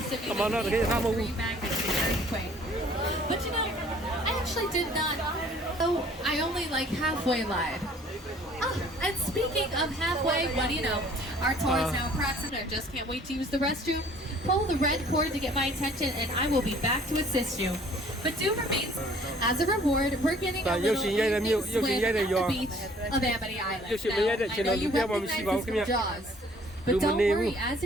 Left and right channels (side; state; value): both; normal; correlation 0.56